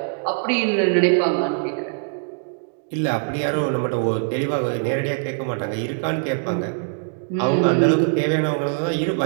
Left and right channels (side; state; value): left; silent; 58 dB below the other